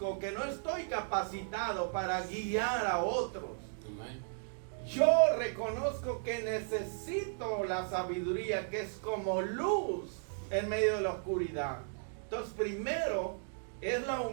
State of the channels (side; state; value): left; silent; digital silence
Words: que no estoy capacitado para guiar a otros. Yo reconozco que necesito la sabiduría, que es como luz en medio de la oscuridad. Entonces, primero es la